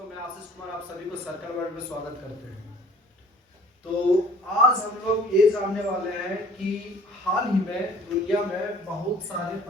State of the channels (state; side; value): normal; both; correlation 0.51